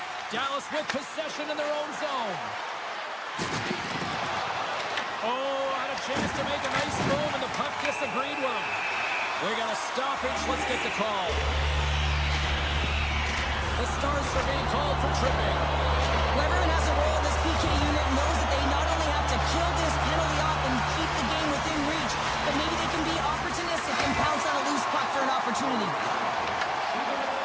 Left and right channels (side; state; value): both; identical; correlation 1.00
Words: Dallas with possession in their own zone. Oh, had a chance to make a nice move, and the puck disagreed with him. We got a stoppage. Let's get the call. The Stars are being called for tripping. Well, everyone has a role in this PK unit and knows that they not only have to kill this penalty off and keep the game within reach, but maybe they can be opportunistic and pounce on a loose puck for an opportunity.